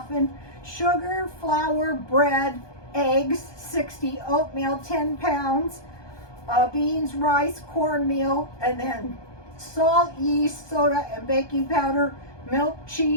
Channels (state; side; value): late; right; 1.2 ms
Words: Sugar, flour, bread, eggs, 60, oatmeal, 10 pounds, beans, rice, cornmeal, and then salt, yeast, soda, and baking powder, milk,